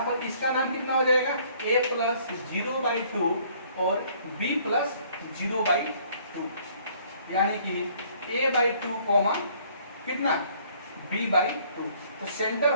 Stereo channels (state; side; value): inverted; both; correlation -0.60